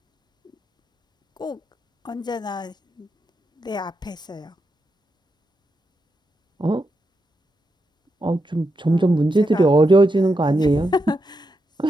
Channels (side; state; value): both; normal; correlation 0.85